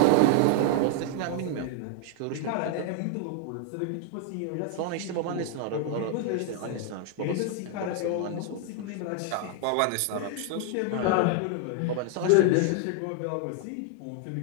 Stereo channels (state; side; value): different; both; correlation 0.00